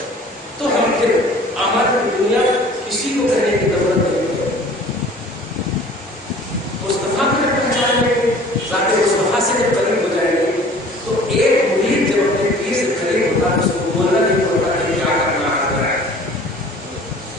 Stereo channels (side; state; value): both; normal; correlation 0.48